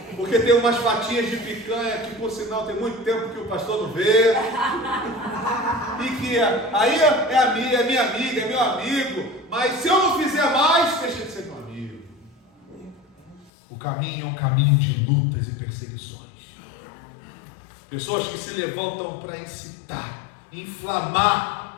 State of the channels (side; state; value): right; drops out; at 13.5 s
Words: Porque tem umas fatias de picanha que, por sinal, tem muito tempo que o pastor não vê. E que aí é minha amiga, é meu amigo. Mas se eu não fizer mais, deixa de ser meu amigo. O caminho é um caminho de lutas e perseguições. Pessoas que se levantam para incitar,